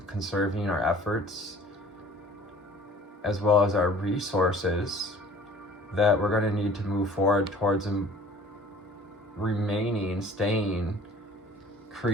conserving our efforts, as well as our resources that we're going to need to move forward towards staying,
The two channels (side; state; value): both; normal; correlation 0.49